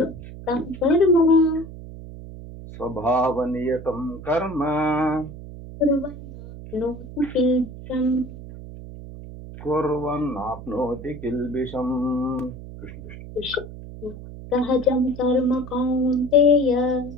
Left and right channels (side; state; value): right; noise; hum, 13 dB below the sound